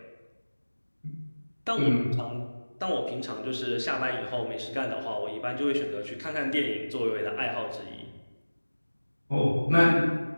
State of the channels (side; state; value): both; inverted; correlation -1.00